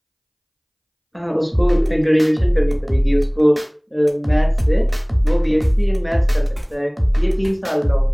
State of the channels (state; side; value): identical; both; correlation 1.00